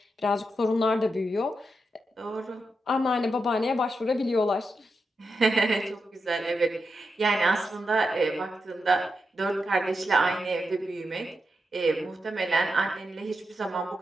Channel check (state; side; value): normal; both; correlation 0.86